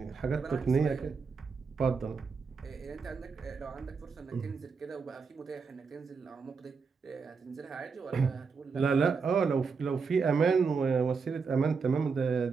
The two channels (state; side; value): quieter; left; 5.2 dB